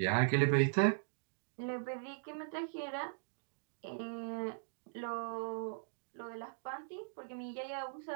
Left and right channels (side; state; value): left; silent; digital silence